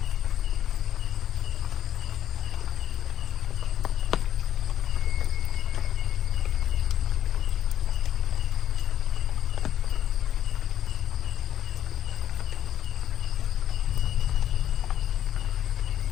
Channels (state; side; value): quieter; right; 10.9 dB